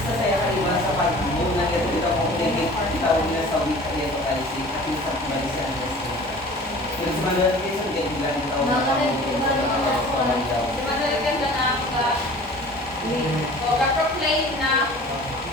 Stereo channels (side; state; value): both; normal; correlation 0.44